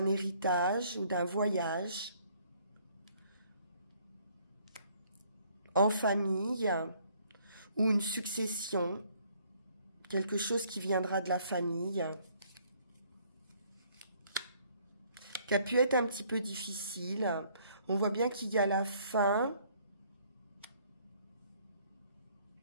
héritage ou d'un voyage en famille ou une succession, quelque chose qui viendra de la famille, qui a pu être un petit peu difficile. On voit bien qu'il y a la fin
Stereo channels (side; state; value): both; inverted; correlation -0.63